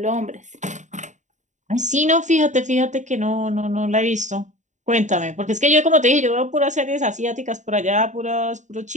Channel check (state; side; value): late; left; 0.35 ms